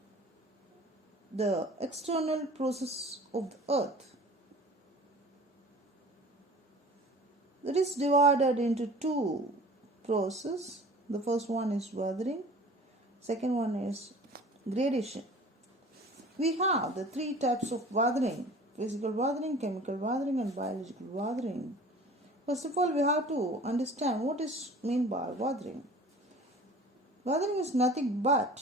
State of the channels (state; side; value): normal; both; correlation 0.44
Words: the external process of the earth. That is divided into two processes. The first one is weathering, second one is gradation. We have the three types of weathering: physical weathering, chemical weathering and biological weathering. First of all, we have to understand what is meant by weathering. Weathering is nothing but